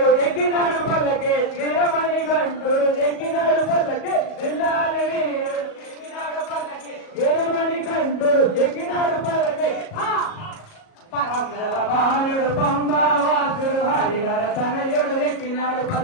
ఎక్కినాడు పల్లకి వీరమణికంఠుడు ఎక్కినాడు పల్లకి విల్లాలి వేలుడు ఎక్కినాడు పల్లకి వీరమణికంఠుడు ఎక్కినాడు పల్లకి బాలుడు పంబావాసుడు హరిహర తనయుడు ఎక్కినాడు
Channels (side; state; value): right; late; 37 ms